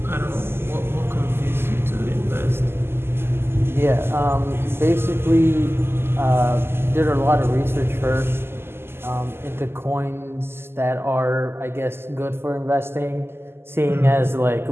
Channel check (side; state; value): left; late; 0.12 ms